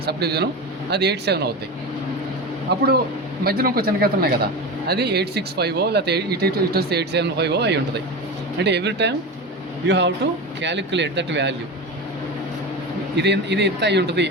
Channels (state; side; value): normal; both; correlation 0.24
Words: సబ్ డివిజను, అది 87 అవుతాయి. అప్పుడు మధ్యలో ఇంకో చిన్న గీత ఉన్నాయి కదా, అది 865 లేకపోతే ఇటు వస్తే 875 అయి ఉంటుంది. అంటే every time you have to calculate that value. ఇది ఎంత అయి ఉంటుంది